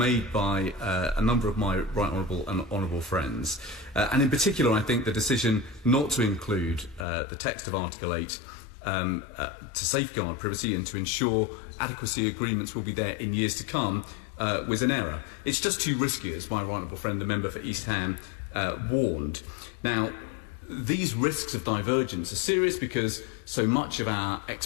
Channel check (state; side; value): drops out; right; at 7.1 s